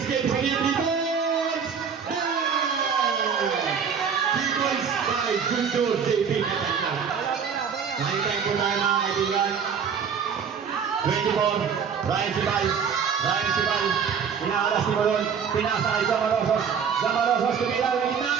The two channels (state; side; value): quieter; left; 6.8 dB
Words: game sa gilid. 3 points. 3 points by Junior JB Katanga. Nakintay po tayo mga kaibigan. 24, Ryan Sibal, inaalas ni Molon, pinasa kay Jamarosos, tumila ng